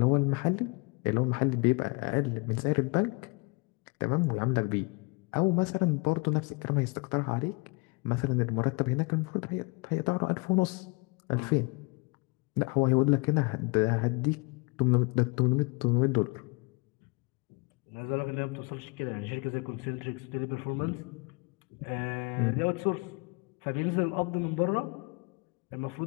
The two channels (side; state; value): right; quieter; 28.6 dB